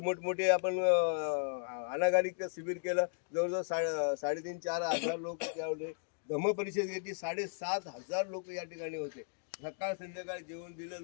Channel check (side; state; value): right; silent; digital silence